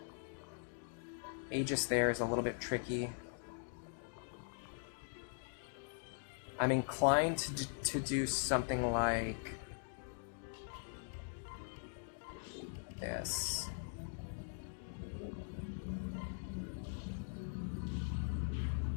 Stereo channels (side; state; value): right; silent; digital silence